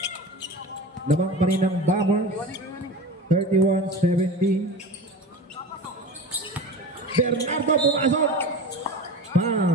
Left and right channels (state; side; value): normal; both; correlation 0.32